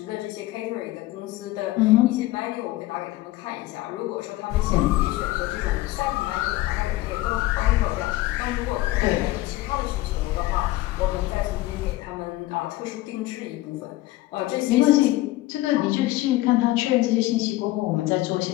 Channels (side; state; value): right; quieter; 17.4 dB